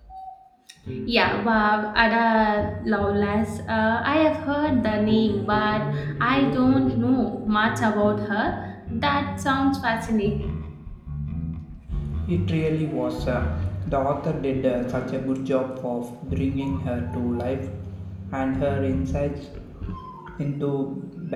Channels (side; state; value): both; identical; correlation 1.00